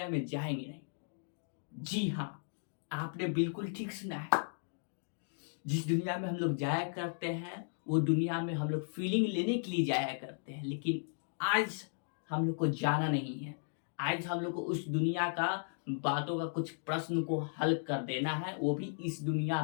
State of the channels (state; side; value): silent; right; digital silence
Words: में जाएंगे नहीं। जी हाँ, आपने बिल्कुल ठीक सुना है। जिस दुनिया में हम लोग जाया करते हैं वो दुनिया में हम लोग फीलिंग लेने के लिए जाया करते हैं, लेकिन आज हम लोग को जाना नहीं है। आज हम लोग को उस दुनिया का बातों का कुछ प्रश्न को हल कर देना है, वो भी इस दुनिया